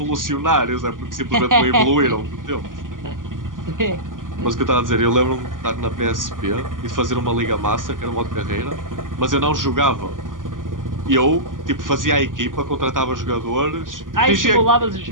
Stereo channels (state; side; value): late; left; 0.89 ms